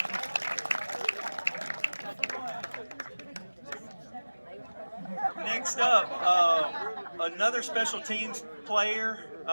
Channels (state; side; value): inverted; both; correlation -1.00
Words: Next up, another special teams player,